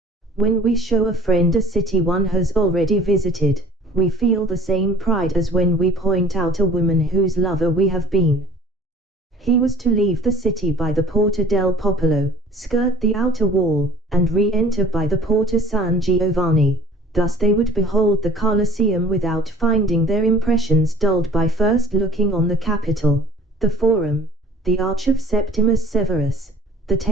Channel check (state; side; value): normal; both; correlation 0.50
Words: When we show a friend a city one has already visited, we feel the same pride as when we point out a woman whose lover we have been. He was to leave the city by the Porta del Popolo, skirt the outer wall, and re-enter by the Porta San Giovanni. Thus they would behold the Colosseum without finding their impressions dulled by first looking on the Capitol, the Forum, the Arch of Septimus Severus, the